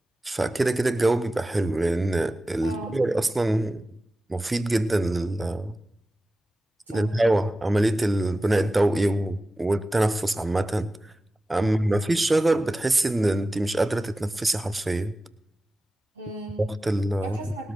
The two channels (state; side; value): normal; both; correlation 0.95